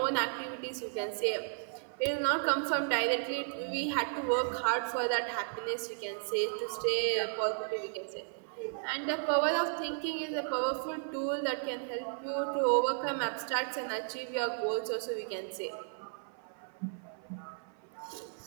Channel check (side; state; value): left; silent; 55 dB below the other